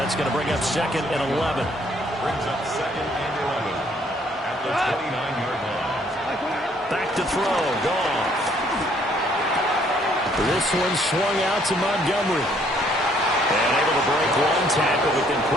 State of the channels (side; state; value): both; normal; correlation 0.65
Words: going to bring up 2nd and 11. Brings up 2nd and 11 at the 29-yard line. Back to throw. Goff. This one swung out to Montgomery. And able to break one tackle, but then